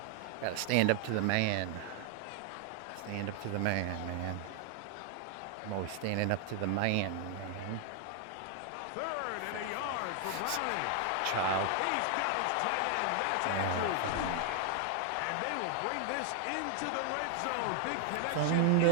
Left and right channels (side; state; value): both; different; correlation 0.00